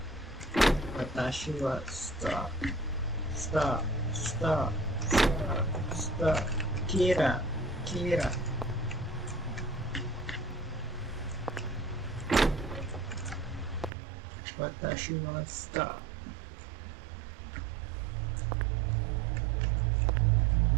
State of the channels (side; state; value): left; drops out; at 13.9 s